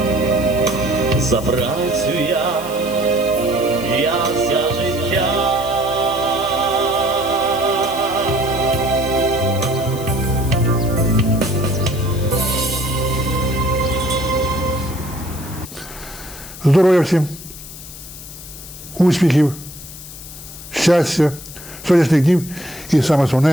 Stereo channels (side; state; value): left; noise; hiss, 14 dB below the sound